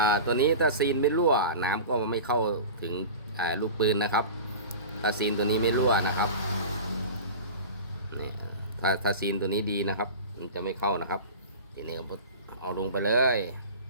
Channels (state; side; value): inverted; both; correlation -0.34